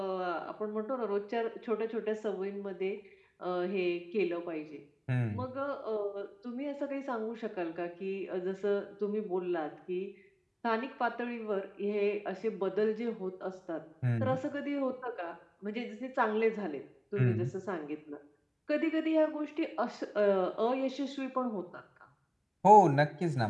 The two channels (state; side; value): identical; both; correlation 1.00